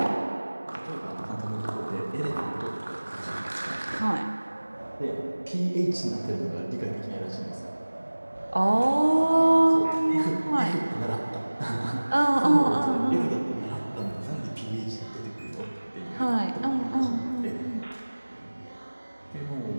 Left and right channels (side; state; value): both; inverted; correlation -1.00